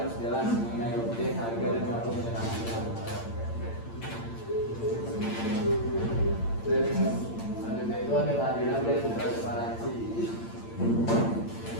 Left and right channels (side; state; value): right; late; 8.8 ms